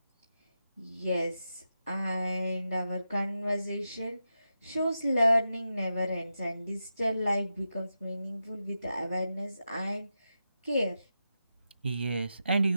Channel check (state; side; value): inverted; both; correlation -0.89